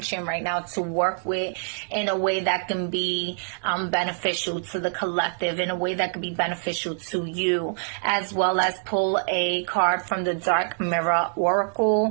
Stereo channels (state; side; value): silent; left; digital silence